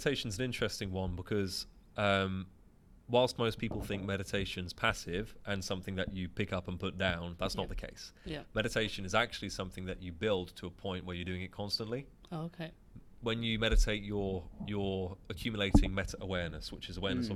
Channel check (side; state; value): both; identical; correlation 1.00